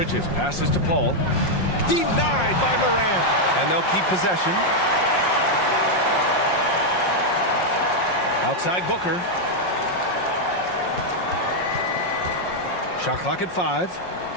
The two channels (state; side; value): late; right; 5.6 ms